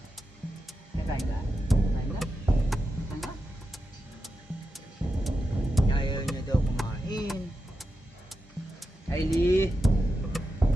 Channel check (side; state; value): both; normal; correlation 0.89